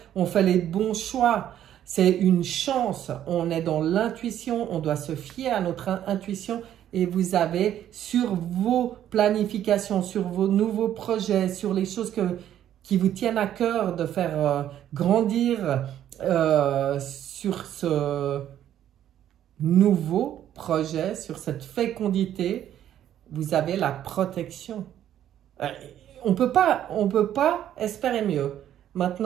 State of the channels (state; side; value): quieter; left; 11.1 dB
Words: on fait les bons choix. C'est une chance, on est dans l'intuition, on doit se fier à notre intuition. Et vous avez sur vos planifications, sur vos nouveaux projets, sur les choses qui vous tiennent à cœur de faire grandir sur ce nouveau projet, sur cette fécondité, vous avez la protection. On peut pas espérer mieux.